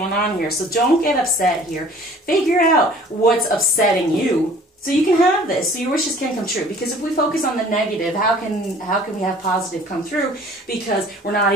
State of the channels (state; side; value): normal; both; correlation 0.51